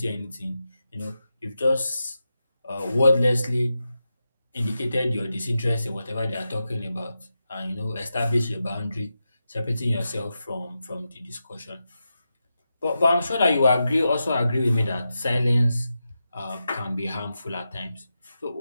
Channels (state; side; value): inverted; both; correlation -0.89